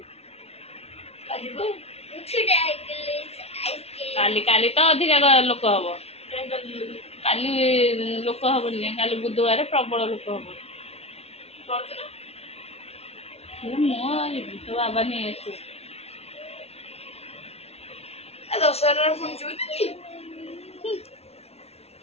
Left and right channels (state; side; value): late; right; 0.30 ms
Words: କାଲି ତ ଅଧିକା ଲୋକ ହବ। କାଲି ଲୋକ ହବନି, କାଲି ବୁଧବାର ପ୍ରବଳ ଲୋକ ହବ। ମୁଁ ଯିବି, ତୋ ବାବା ନେଇ ଆସିବୁ।